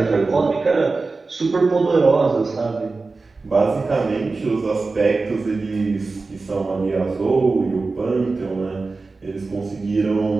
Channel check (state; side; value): quieter; left; 3.8 dB